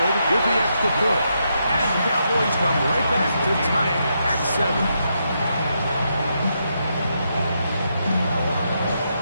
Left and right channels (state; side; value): inverted; both; correlation -0.81